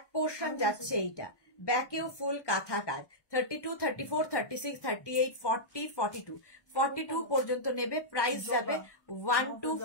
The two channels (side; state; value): right; late; 1.2 ms